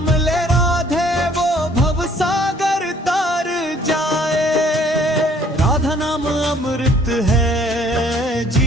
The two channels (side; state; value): both; normal; correlation 0.59